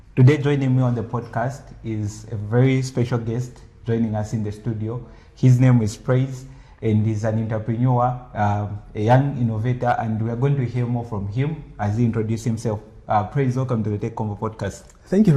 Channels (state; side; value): identical; both; correlation 1.00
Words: Today, joining me on the podcast is a very special guest joining us in the studio. His name is Praise, and he's an entrepreneur, a young innovator, and we are going to hear more from him as he introduces himself. Praise, welcome to the Tech Convo podcast. Thank you